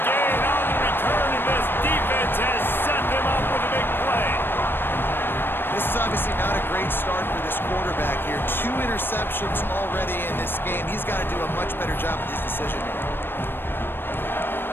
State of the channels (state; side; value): late; right; 0.099 ms